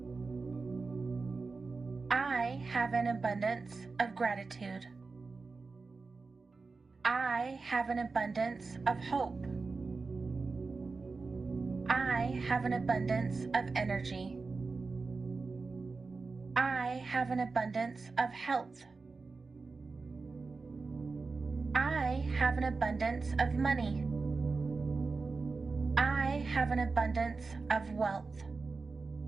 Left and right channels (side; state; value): left; quieter; 4.1 dB